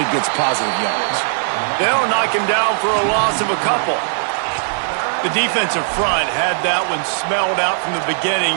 gets positive yards. They'll knock him down for a loss of a couple. The defensive front had that one smelled out from the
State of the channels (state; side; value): silent; left; 60 dB below the other